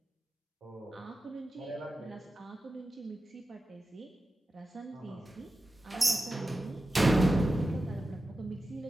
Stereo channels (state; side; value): normal; both; correlation 0.93